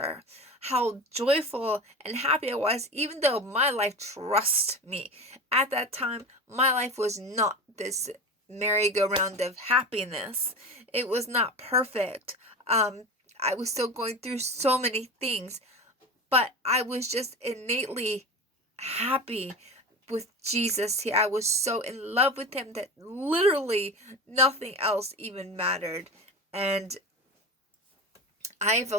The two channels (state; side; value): normal; both; correlation 0.28